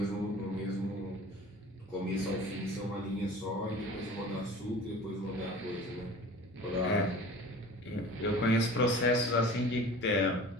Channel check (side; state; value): both; normal; correlation 0.41